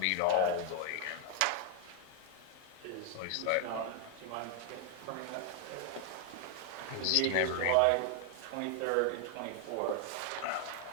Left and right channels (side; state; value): both; different; correlation 0.00